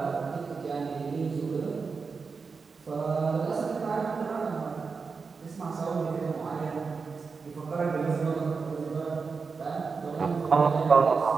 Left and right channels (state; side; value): quieter; left; 5.0 dB